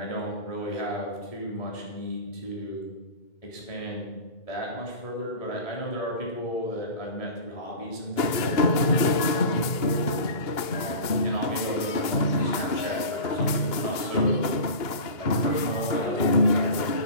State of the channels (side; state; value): right; late; 2.2 ms